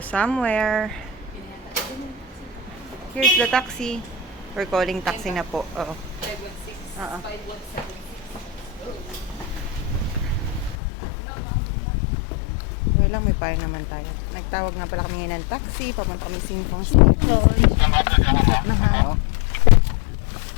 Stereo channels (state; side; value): drops out; right; at 10.8 s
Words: somewhere. Here's the taxi. We're calling taxi na po. Oo. 516. Oo. 5176. Okay lang, may payo naman tayo. Nagtawag nga pala kami ngayon ng taxi. Papunta kami Singpong Station. Na ha.